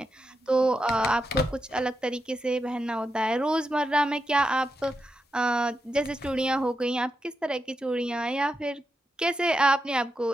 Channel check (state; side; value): normal; both; correlation 0.86